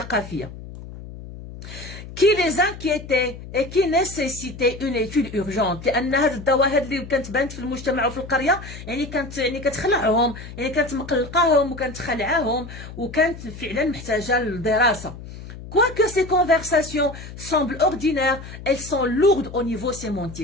qui les inquiétait et qui nécessitait une étude urgente. لان هاد الظواهر اللي كانت بانت في المجتمع وفي القريه يعني كانت كتخلعهم، يعني كانت مقلقاهم وكانت خلعاهم وكانت فعلا محتاجه للدراسه. Quoique ces conversations semblent ordinaires, elles sont lourdes au niveau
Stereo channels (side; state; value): left; noise; hum, 13 dB below the sound